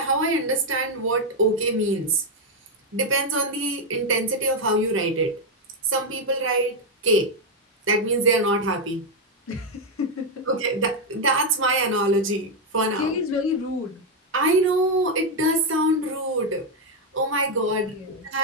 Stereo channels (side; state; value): both; normal; correlation 0.03